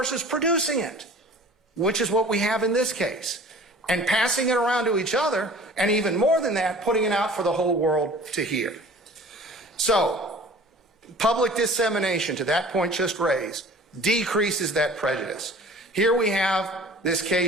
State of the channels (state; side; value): normal; both; correlation 0.46